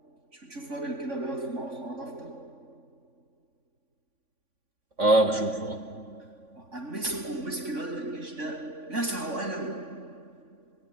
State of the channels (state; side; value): late; left; 3.5 ms